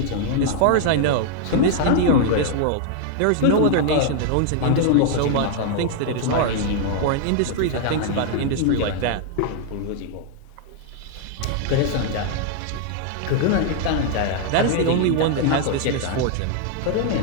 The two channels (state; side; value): different; both; correlation 0.00